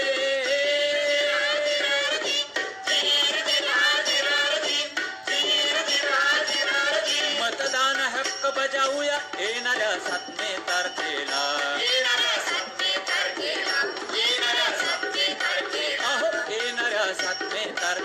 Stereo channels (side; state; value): both; identical; correlation 1.00